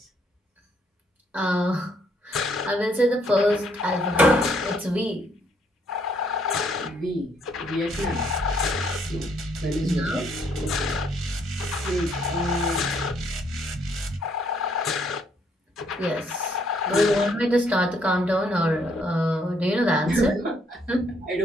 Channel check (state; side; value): normal; both; correlation 0.70